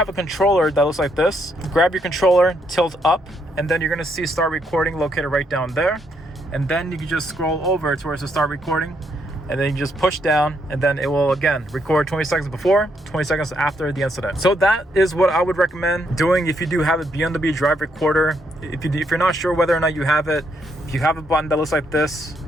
a controller that looks like this, grab your controller, tilt up, and then you're gonna see start recording located right down there. And then you can just scroll over to where it says start recording, and then you just push down, and then it will again record 20 seconds before, 20 seconds after the incident. So that is what I would recommend doing if you do have a BMW drive recorder. If you're not sure whether or not you have it, if you have a button that looks like this,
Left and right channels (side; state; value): both; normal; correlation 0.75